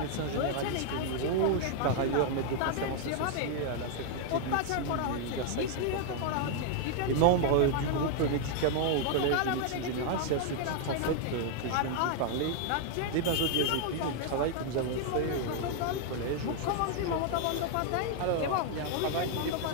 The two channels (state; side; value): different; both; correlation 0.00